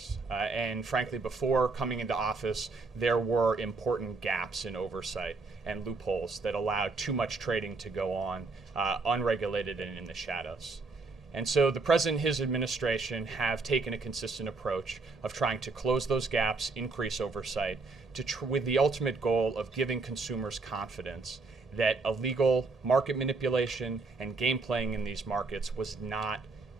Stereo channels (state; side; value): quieter; left; 3.9 dB